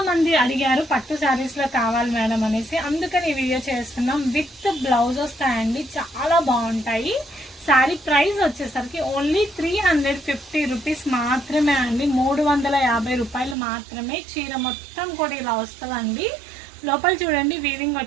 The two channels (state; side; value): drops out; left; at 13.6 s